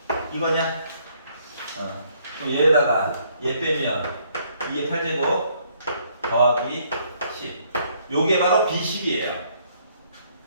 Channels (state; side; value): inverted; both; correlation -0.67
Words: 이거냐? 그럼 얘에다가 얘 빼면 2의 8제곱 더하기 10. 요게 바로 B10이에요.